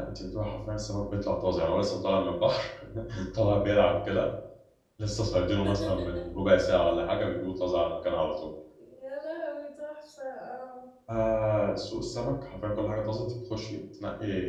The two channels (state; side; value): identical; both; correlation 1.00